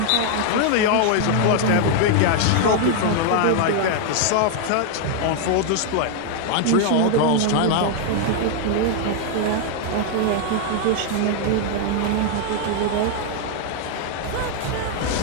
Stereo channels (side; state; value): both; different; correlation 0.00